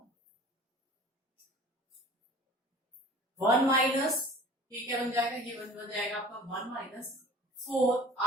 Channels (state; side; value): normal; both; correlation 0.44